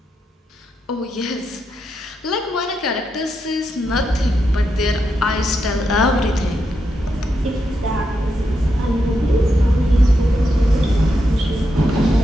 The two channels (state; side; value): normal; both; correlation 0.84